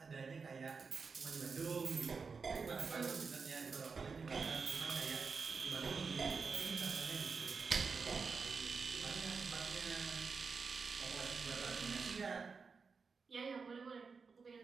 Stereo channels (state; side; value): quieter; left; 5.0 dB